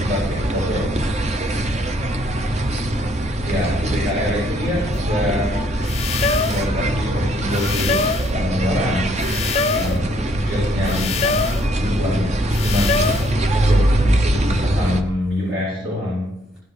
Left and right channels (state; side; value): normal; both; correlation 0.67